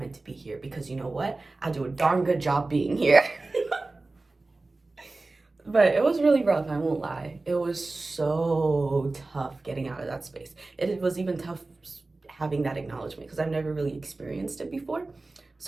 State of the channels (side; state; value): left; quieter; 3.3 dB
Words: to be here. Because you know what? I do a darn good job being here. But it was really rough, I won't lie. It was so tough getting out of that space. It was even tough having that acknowledgement because I've never really experienced it before.